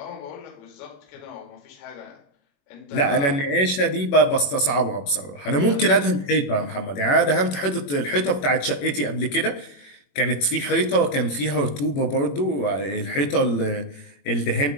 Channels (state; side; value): late; right; 21 ms